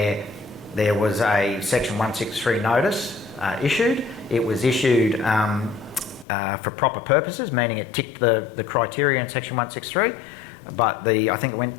there was a Section 163 notice issued. It was issued for proper purposes, meaning it ticked the criteria in Section 163, but I think it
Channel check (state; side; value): drops out; right; at 6.2 s